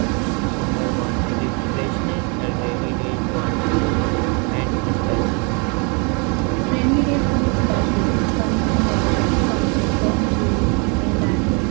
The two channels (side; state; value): left; quieter; 33.6 dB